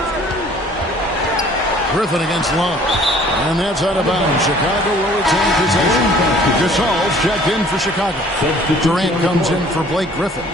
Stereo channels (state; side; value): normal; both; correlation 0.54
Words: Griffin against Love. And that's out of bounds. Chicago will retain possession. Gasol's checked in for Chicago. Durant comes in for Blake Griffin.